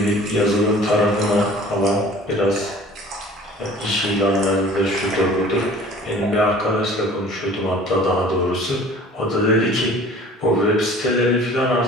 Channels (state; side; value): normal; both; correlation 0.47